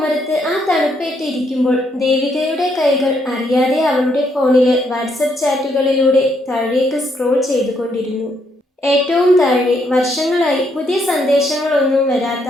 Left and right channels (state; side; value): normal; both; correlation 0.74